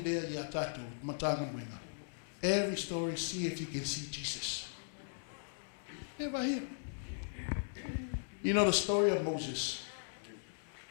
there ya tatu matanga mwinga. Every story, see if you can see Jesus. Never here. You know the story of Moses.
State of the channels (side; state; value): right; silent; digital silence